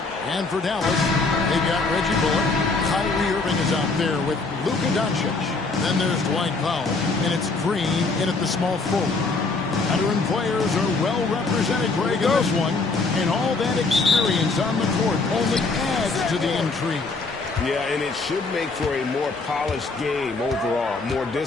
And for Dallas, they've got Reggie Bullock. Kyrie Irving is out there with Luka Doncic. Then there's Dwight Powell. And it's Green in at the small forward. Veteran players are well represented, Greg, in this one. And all that experience on the court only adds to the intrigue. Yeah, and it should make for a more polished game overall. More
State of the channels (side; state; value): right; quieter; 3.9 dB